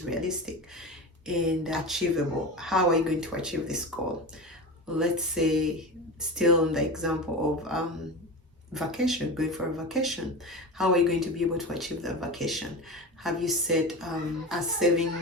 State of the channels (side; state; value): both; normal; correlation 0.27